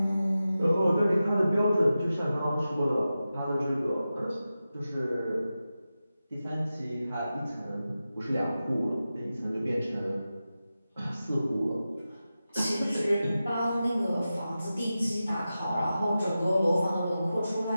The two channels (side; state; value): both; inverted; correlation -0.93